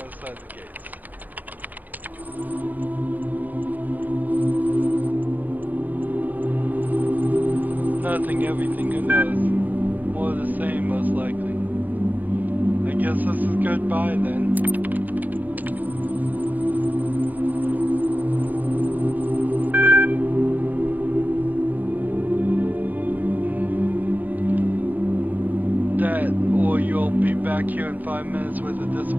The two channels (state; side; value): late; left; 0.084 ms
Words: side of the gates? Nothing, everything, who knows? More of the same, most likely. I guess this is goodbye then. That, or you'll be back here in 5 minutes with a